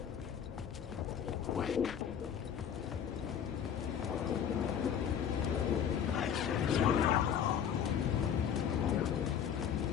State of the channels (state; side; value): quieter; right; 8.4 dB